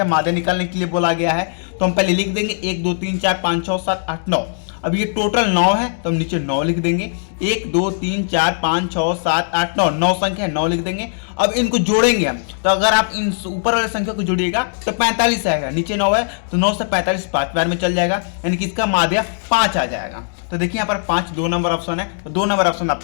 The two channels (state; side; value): silent; right; digital silence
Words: माध्य निकालने के लिए बोला गया है, तो हम पहले लिख देंगे 1 2 3 4 5 6 7 8 9। अब ये टोटल 9 है तो हम नीचे 9 लिख देंगे, 1 2 3 4 5 6 7 8 9, 9 संख्या है, 9 लिख देंगे। अब इनको जोड़ेंगे हम, तो अगर आप इन ऊपर वाले संख्या को जोड़िएगा तो 45 आएगा, नीचे 9 है तो 9 से 45 5 बार में चल जाएगा, यानी कि इसका माध्य 5 आ जाएगा। तो देखिए यहाँ पर 5 2 नंबर ऑप्शन है, तो 2 नंबर ऑप्शन